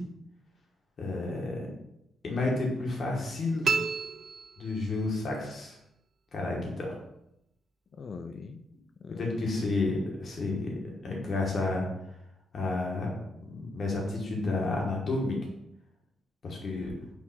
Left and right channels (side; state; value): both; normal; correlation 0.78